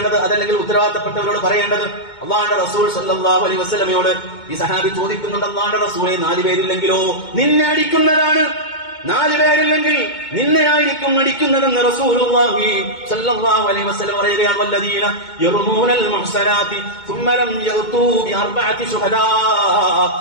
അതല്ലെങ്കിൽ ഉത്തരവാദിത്തപ്പെട്ടവരോട് പറയേണ്ടത്. അല്ലാഹുവിന്റെ റസൂൽ സല്ലല്ലാഹു അലൈഹി വസല്ലമയോട് ഈ സഹാബി ചോദിക്കുന്നുണ്ട്, അല്ലാഹുവിന്റെ റസൂലേ, 4 പേരില്ലെങ്കിലോ? നിന്നെ അടിക്കുന്നതാണ്. 4 പേരില്ലെങ്കിൽ നിന്നെയായിരിക്കും അടിക്കുന്നതെന്ന് റസൂലുള്ളാഹി സ്വല്ലല്ലാഹു അലൈഹി വസല്ലം പറയുകയാണ്. വല്ലദീന യർമൂനൽ മുഹ്സനാതി ثم لم يأتوا بأربعة شهداء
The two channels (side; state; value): right; late; 2.2 ms